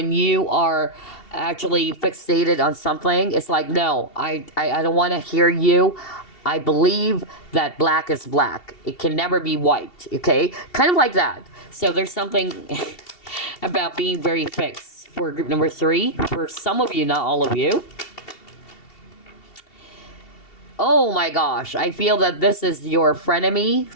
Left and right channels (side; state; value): right; late; 2.7 ms